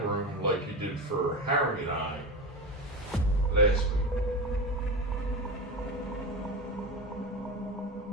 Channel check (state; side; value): normal; both; correlation 0.23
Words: room like you did for Harry and I last week?